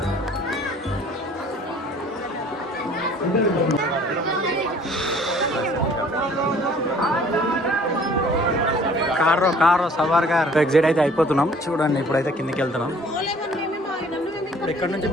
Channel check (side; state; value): both; normal; correlation 0.53